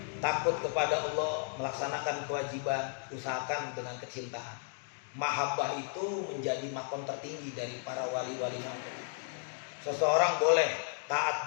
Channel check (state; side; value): silent; right; 55 dB below the other